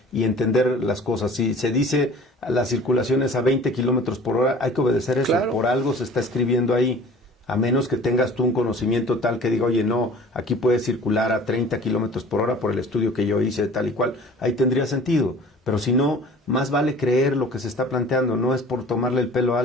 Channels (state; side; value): normal; both; correlation 0.46